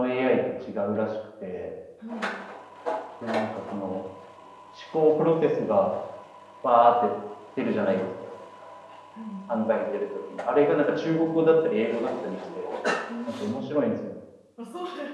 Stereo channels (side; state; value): both; identical; correlation 1.00